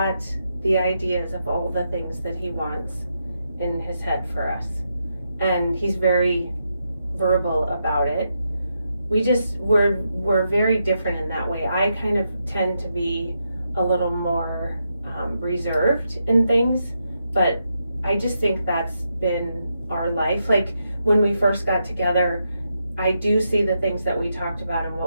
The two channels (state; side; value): inverted; both; correlation -0.83